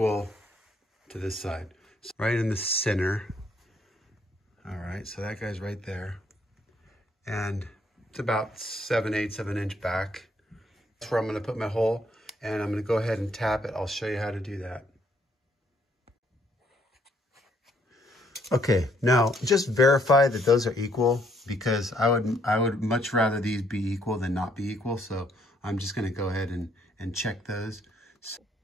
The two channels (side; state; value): both; normal; correlation 0.68